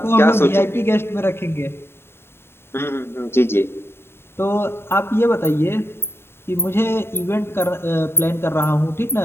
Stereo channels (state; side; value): late; right; 0.11 ms